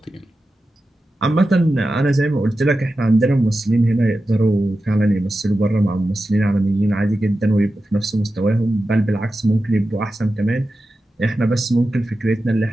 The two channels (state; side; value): normal; both; correlation 0.92